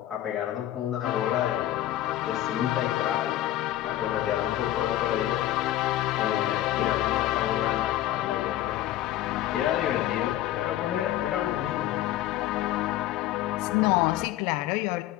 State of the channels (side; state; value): right; quieter; 13.6 dB